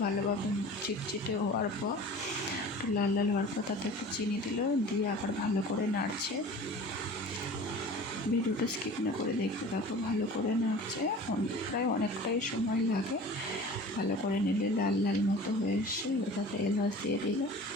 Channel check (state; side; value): normal; both; correlation 0.41